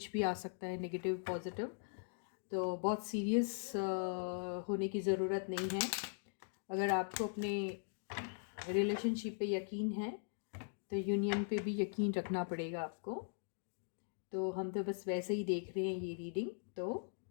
भी आ सकता है, नेगेटिव पॉजिटिव। तो बहुत सीरियस होने की ज़रूरत नहीं है। अगर आपको अपने रिलेशनशिप पे यकीन है तो यूनियन पे भी यकीन रखना पड़ेगा आपको। तो हम तो बस वैसे ही देख रहे हैं ये रीडिंग। तो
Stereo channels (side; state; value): right; silent; digital silence